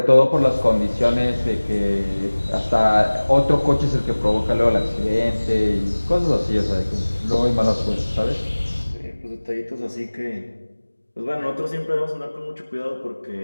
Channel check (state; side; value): inverted; both; correlation -1.00